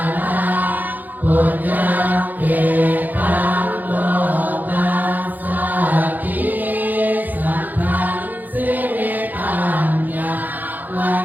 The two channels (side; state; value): left; late; 0.084 ms